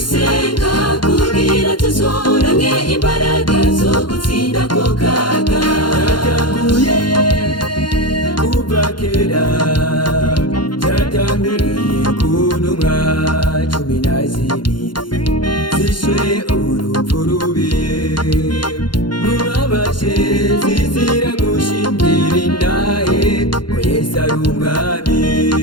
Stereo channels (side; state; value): right; late; 0.71 ms